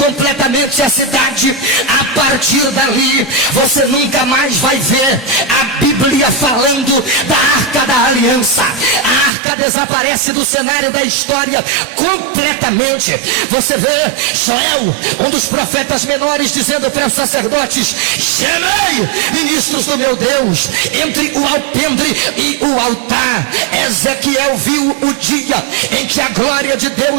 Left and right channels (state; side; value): drops out; left; at 9.3 s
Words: a cidade, a partir dali você nunca mais vai ver a Bíblia falando da Arca da Aliança. A arca desaparece do cenário da história completamente. Você vê Joel, um dos profetas menores, dizendo para os sacerdotes: gemei, ministros do meu Deus, entre o alpendre e o altar. Ezequiel viu o dia em que a glória de